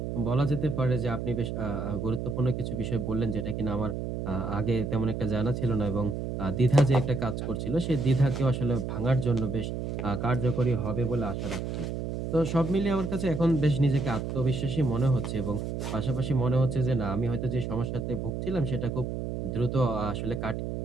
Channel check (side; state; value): right; noise; hum, 4 dB below the sound